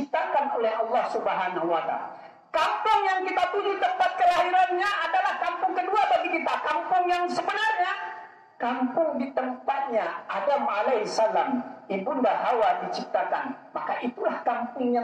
oleh Allah Subhanahu wa Ta'ala. Kampung yang kita tuju tempat kelahirannya adalah kampung kedua bagi kita. Kampung yang sebenarnya, kampung di tempatnya Adam alaihissalam, ibunda Hawa diciptakan. Maka itulah kampung yang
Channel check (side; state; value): both; identical; correlation 1.00